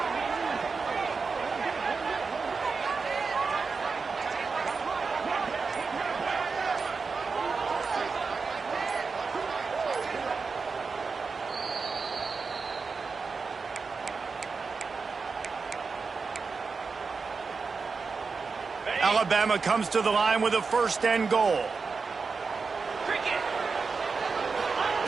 Alabama comes to the line with a 1st and goal.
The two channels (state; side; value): quieter; left; 4.8 dB